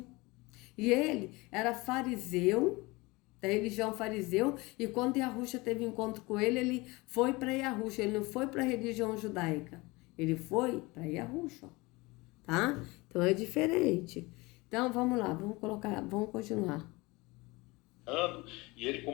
e ele era fariseu, da religião fariseu, e quando Yahushua teve encontro com ele foi para Yahushua, ele não foi para a religião judaica, ele foi para Yahushua, tá? Então é diferente. Então vamos lá, vamos continuar. E ele,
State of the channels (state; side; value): quieter; right; 23.5 dB